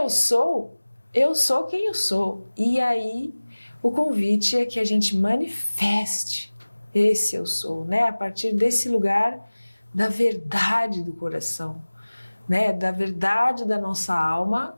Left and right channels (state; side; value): inverted; both; correlation -1.00